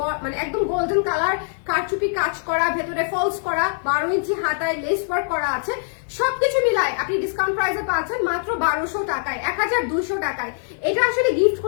মানে একদম গোল্ডেন কালার, কারচুপি কাজ করা, ভেতরে ফলস করা, 12 ইঞ্চি হাতায় লেস ওয়ার্ক করা আছে। সবকিছু মিলায় আপনি ডিসকাউন্ট প্রাইসে পাচ্ছেন মাত্র 1200 টাকায়, 1200 টাকায়। এটা আসলে গিফট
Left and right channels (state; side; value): silent; right; digital silence